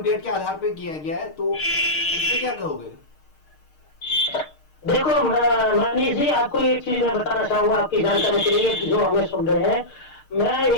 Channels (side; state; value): right; late; 6.5 ms